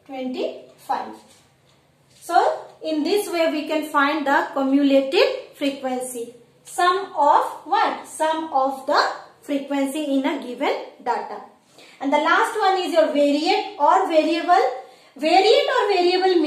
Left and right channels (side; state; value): both; identical; correlation 1.00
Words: 25. So in this way we can find the cumulative frequency. Sum of what? Sum of the frequency in a given data. And the last one is your variate or variable. Variate or variable